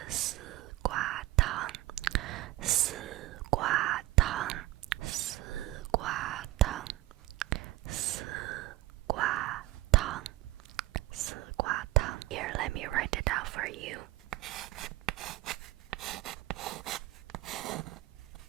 丝瓜汤. 丝瓜汤, 丝瓜汤, 丝瓜汤, 丝瓜汤. Here, let me write it out for you.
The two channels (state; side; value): quieter; left; 17.5 dB